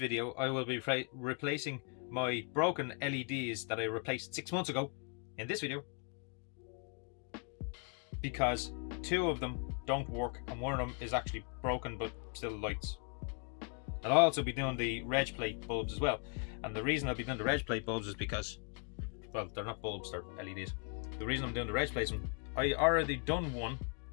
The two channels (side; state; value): right; quieter; 36.5 dB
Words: I will be replacing my broken LEDs that I replaced 6 months ago in this video, because two of them don't work and one of them is actually broken but still lights. And I'll also be doing the reg plate bulbs as well. And the reason I'll be doing the reg plate bulbs is because, well, they're not bulbs, they're LEDs. The reason I'm doing the reg plates, I already done one.